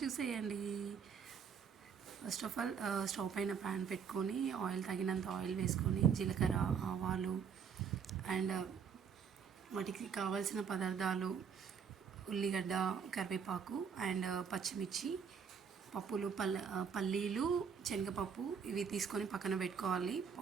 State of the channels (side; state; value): left; quieter; 6.8 dB